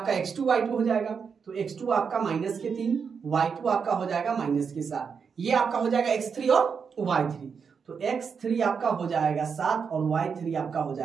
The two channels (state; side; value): quieter; left; 6.1 dB